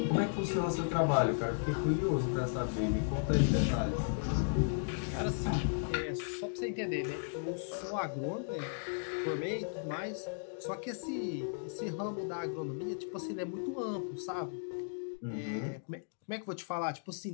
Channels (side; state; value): right; silent; digital silence